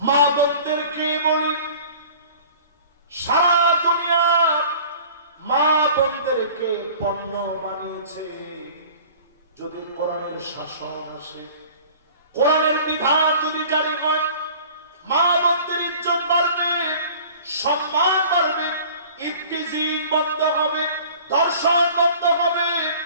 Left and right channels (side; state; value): both; inverted; correlation -0.45